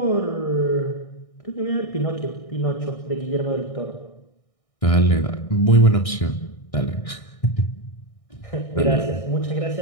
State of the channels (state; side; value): late; right; 1.6 ms